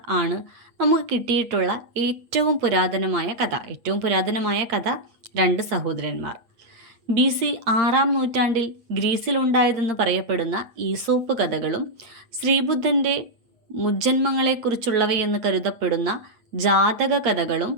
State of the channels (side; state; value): left; late; 8.7 ms